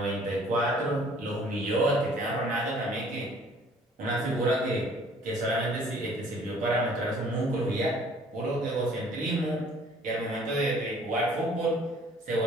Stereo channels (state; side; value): normal; both; correlation 0.56